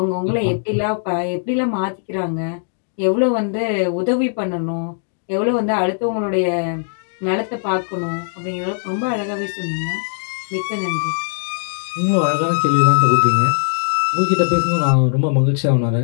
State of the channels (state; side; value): silent; right; digital silence